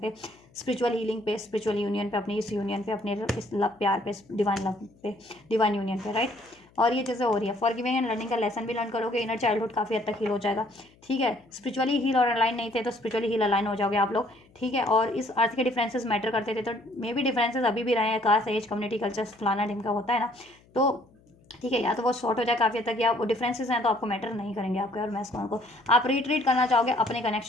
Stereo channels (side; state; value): left; noise; hum, 30 dB below the sound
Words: स्पिरिचुअल हीलिंग पे, स्पिरिचुअल यूनियन पे, अपनी इस यूनियन पे, अपने इस लव प्यार पे, डिवाइन लव पे, डिवाइन यूनियन पे, राइट। और ये चीज़ें हो रही है। फॉरगिविंग एंड लर्निंग का लेसन भी लर्न करोगे, इनर चाइल्डहुड काफ़ी हद तक हील हो जाएगा, ठीक है। स्पिरिचुअली हील और अलाइन नहीं थे, तो स्पिरिचुअली हील अलाइन हो जाओगे आप लोग, ठीक है। और इस अर्थ के डिफरेंसेस मैटर करते थे, तो मे भी डिफरेंसेस अभी भी रहे हैं, कास्ट, एज, कम्युनिटी, कल्चर, फलाना ढिमका होता है ना, तो ठीक है, या तो वो शॉर्ट हो जाए काफ़ी हद तक, या वो डिफरेंसेस हैं तो आपको मैटर नहीं करेंगे आपके और मैस्कुलिन को। आप रिट्रीट करना चाहोगे अपने